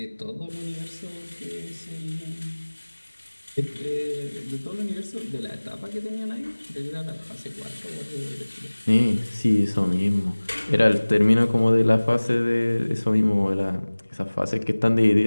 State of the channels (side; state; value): both; inverted; correlation -1.00